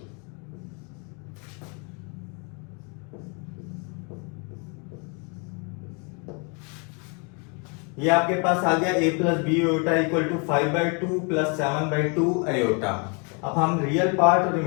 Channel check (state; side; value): quieter; right; 35.4 dB